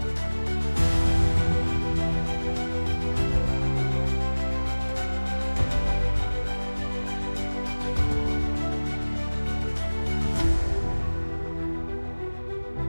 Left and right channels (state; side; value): inverted; both; correlation -1.00